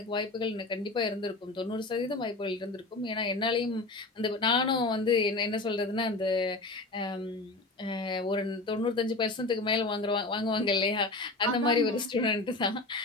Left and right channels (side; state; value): right; quieter; 3.1 dB